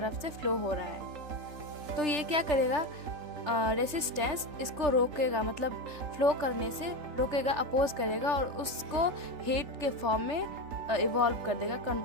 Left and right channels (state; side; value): late; left; 3.4 ms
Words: से फ्लो हो रहा है। तो ये क्या करेगा, रेसिस्टेंस इसको रोकेगा, मतलब फ्लो करने से रोकेगा, अपोज करेगा और उसको हीट के फॉर्म में इवॉल्व कर देगा,